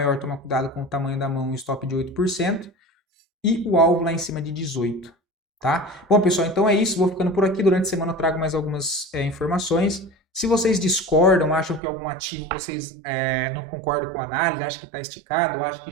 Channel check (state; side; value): drops out; left; at 11.8 s